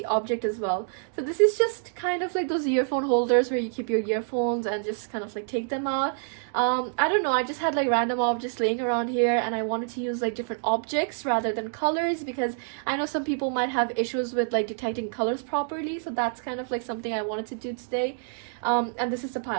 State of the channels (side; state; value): left; silent; digital silence